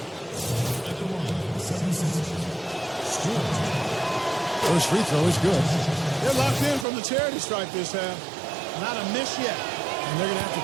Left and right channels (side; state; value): left; drops out; at 6.9 s